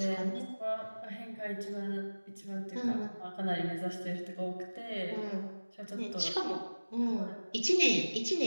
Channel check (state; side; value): inverted; both; correlation -1.00